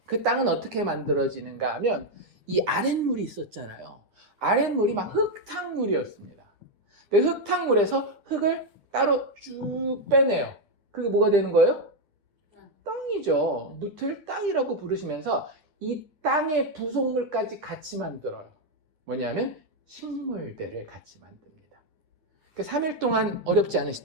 그 땅은 어떻게 만들어지는가 하면 이 아랫물이 있었잖아요. 아랫물이 막 흙탕물이었습니다. 그 흙탕물에서 흙을 따로 쭉 빼내요. 그게 뭐가 되는 거예요? 땅이죠. 묻을 땅이라고 부르시면서 이 땅의 부속물까지 같이 만들어요. 뭐냐면 식물들을 같이 만듭니다. 3일 동안 어렵지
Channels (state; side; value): late; left; 10 ms